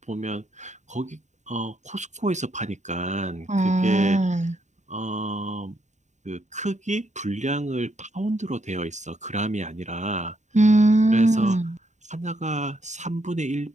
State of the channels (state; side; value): late; left; 0.34 ms